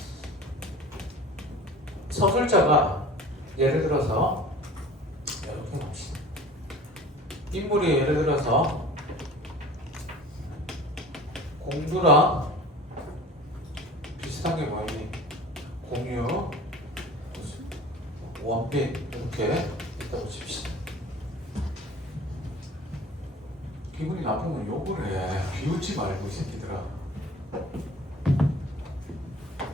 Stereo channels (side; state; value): both; normal; correlation 0.42